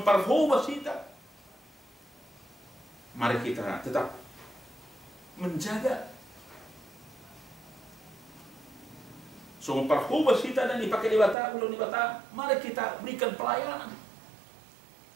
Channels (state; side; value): drops out; left; at 11.4 s